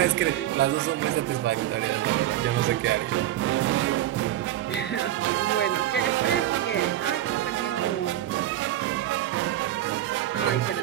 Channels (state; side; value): quieter; left; 12.9 dB